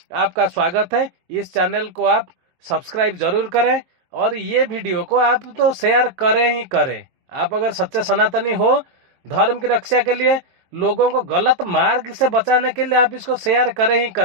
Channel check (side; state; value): left; late; 23 ms